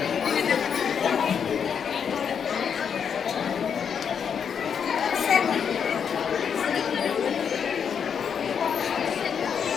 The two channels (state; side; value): quieter; right; 7.2 dB